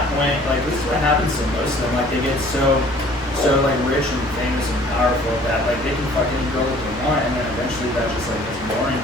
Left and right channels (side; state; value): both; normal; correlation 0.53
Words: point, like, this is what happens to most of them. Like, they get so like rich and famous and powerful that like they can fucking go what they want, and then eventually that just like gets boring